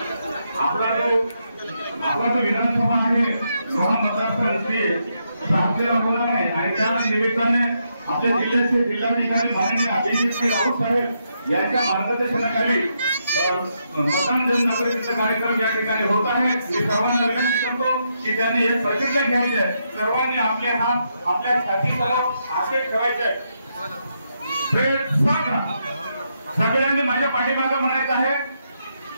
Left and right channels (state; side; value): inverted; both; correlation -0.80